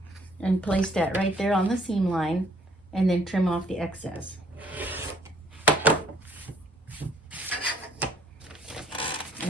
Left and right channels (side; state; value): both; normal; correlation 0.62